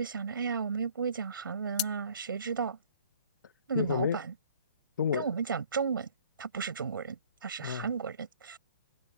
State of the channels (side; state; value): both; inverted; correlation -0.54